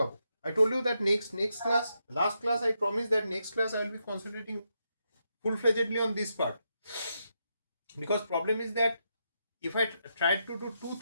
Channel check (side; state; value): both; inverted; correlation -0.83